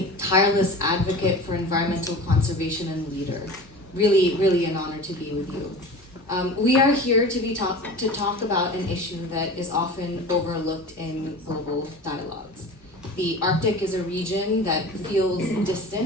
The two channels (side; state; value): both; normal; correlation 0.36